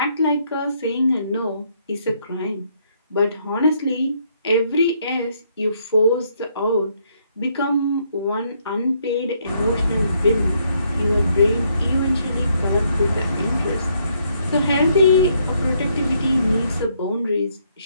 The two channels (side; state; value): both; inverted; correlation -0.71